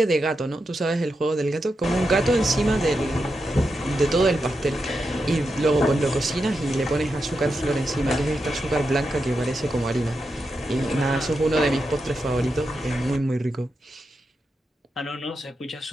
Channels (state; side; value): normal; both; correlation 0.87